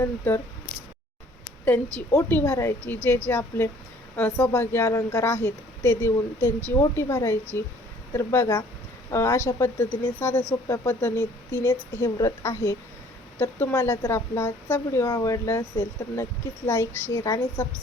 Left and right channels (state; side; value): normal; both; correlation 0.56